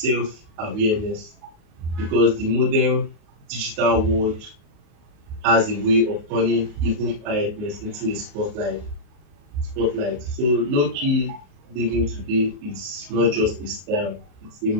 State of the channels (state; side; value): late; left; 37 ms